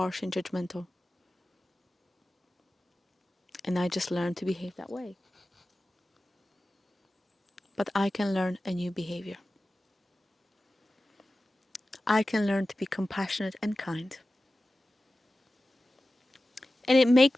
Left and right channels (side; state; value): both; normal; correlation 0.95